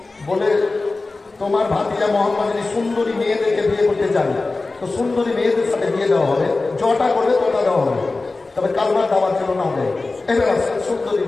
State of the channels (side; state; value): right; quieter; 3.5 dB